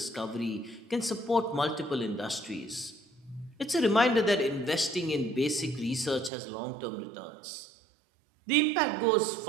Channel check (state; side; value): drops out; left; at 6.3 s